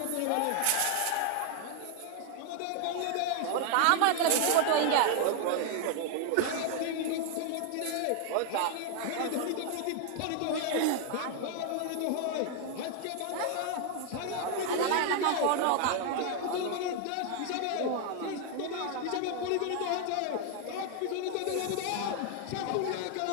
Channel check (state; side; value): different; both; correlation 0.00